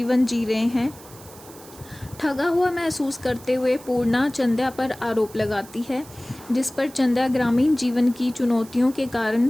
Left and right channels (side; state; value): right; noise; hiss, 20 dB below the sound